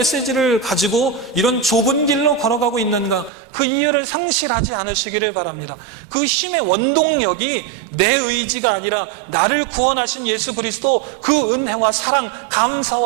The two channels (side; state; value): left; drops out; at 3.3 s